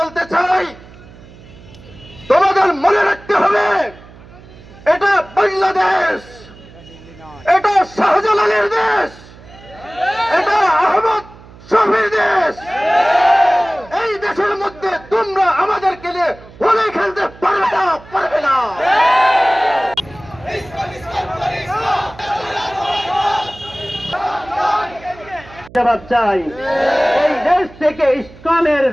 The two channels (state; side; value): noise; right; hum, 21 dB below the sound